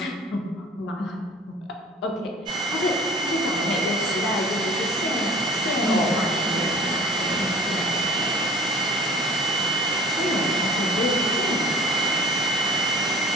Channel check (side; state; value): both; normal; correlation 0.46